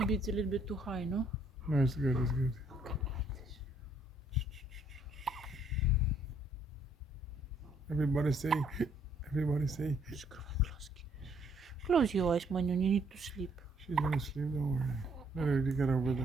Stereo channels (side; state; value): both; normal; correlation 0.66